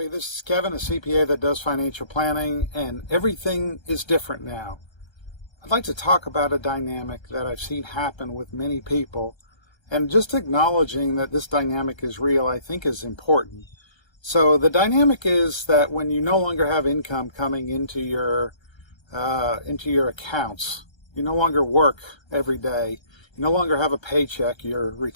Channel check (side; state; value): right; late; 1.3 ms